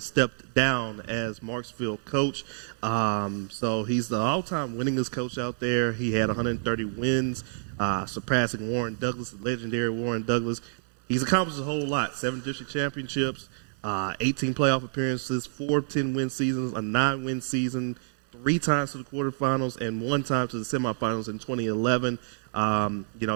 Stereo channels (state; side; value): silent; left; digital silence